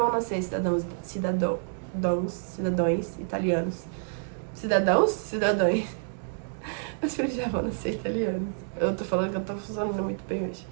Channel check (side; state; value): left; silent; digital silence